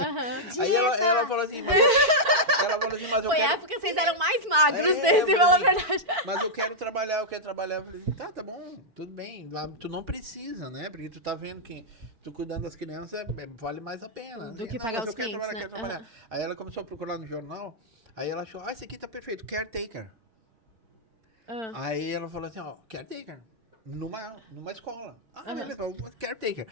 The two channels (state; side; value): late; left; 4.5 ms